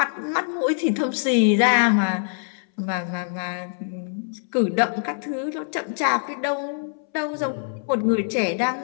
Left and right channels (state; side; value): silent; right; 63 dB below the other